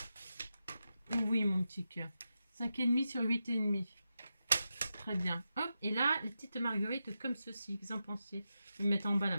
Oui, mon petit cœur. 5,5 sur 8,5. Très bien. Hop. Et là, les petites marguerites comme ceci. Vous en pensez? Je vais mettre en bas la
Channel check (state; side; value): inverted; both; correlation -0.89